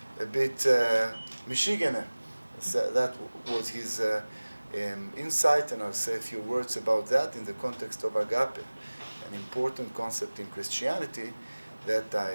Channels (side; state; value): both; inverted; correlation -1.00